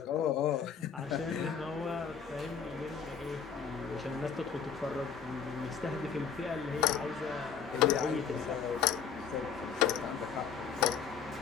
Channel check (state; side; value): quieter; right; 7.0 dB